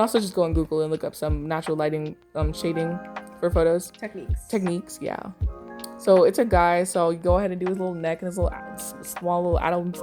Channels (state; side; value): identical; both; correlation 1.00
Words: just go on Google and look up some natural lighting shading for photos. Techniques, yeah. So it's a guy, so you go ahead and do his little neck and his little small little Adam's